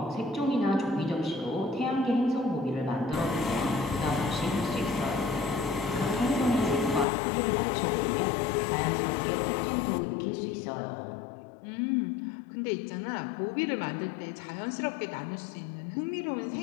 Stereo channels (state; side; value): drops out; right; at 7.1 s